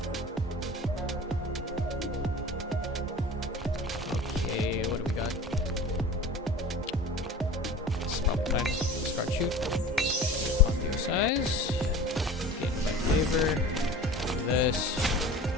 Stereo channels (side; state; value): both; normal; correlation 0.39